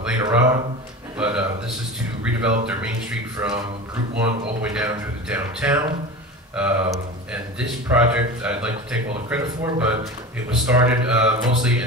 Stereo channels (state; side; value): normal; both; correlation 0.31